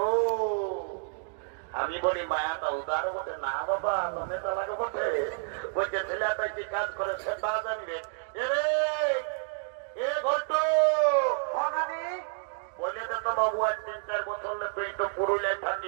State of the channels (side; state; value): left; silent; digital silence